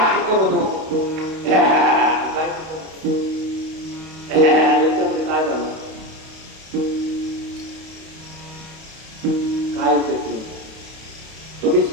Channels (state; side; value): late; left; 31 ms